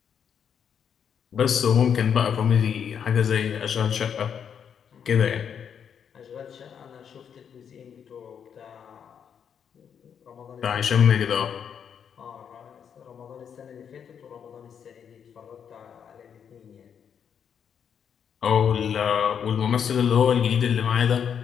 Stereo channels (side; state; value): right; quieter; 7.8 dB